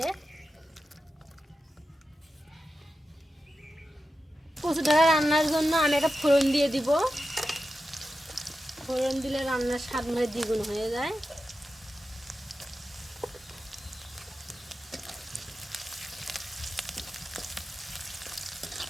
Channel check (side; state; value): both; normal; correlation 0.91